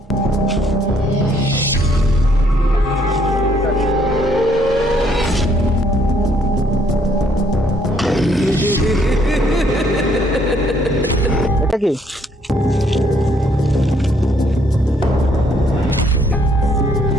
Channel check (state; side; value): normal; both; correlation 0.67